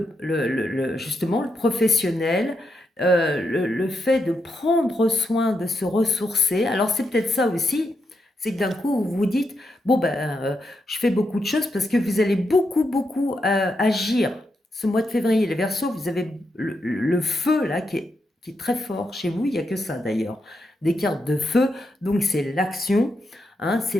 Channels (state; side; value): normal; both; correlation 0.84